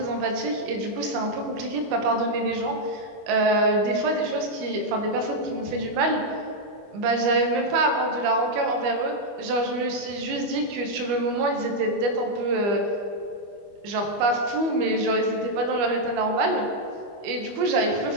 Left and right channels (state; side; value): late; left; 25 ms